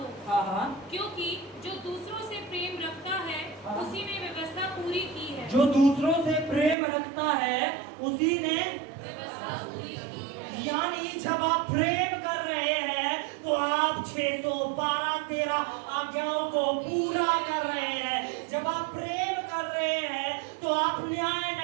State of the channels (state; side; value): drops out; left; at 6.8 s